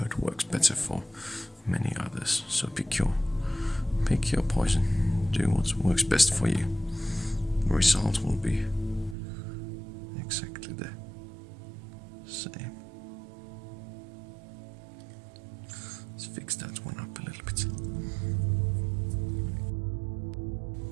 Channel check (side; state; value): left; drops out; at 9.2 s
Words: works better for many others. So pick your poison. Do what works best for you. The result will be exactly the same. Let's fix that one up a little bit.